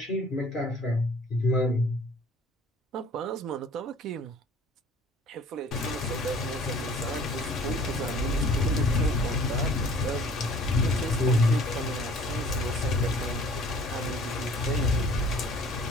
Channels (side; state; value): both; normal; correlation 0.51